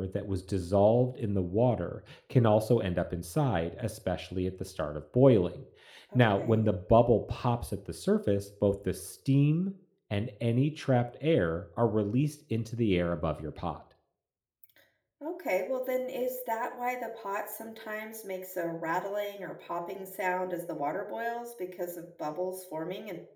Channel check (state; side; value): identical; both; correlation 1.00